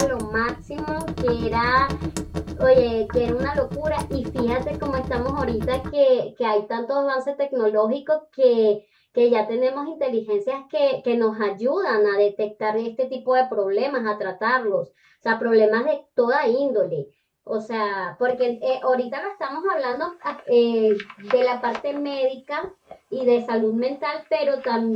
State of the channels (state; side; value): identical; both; correlation 1.00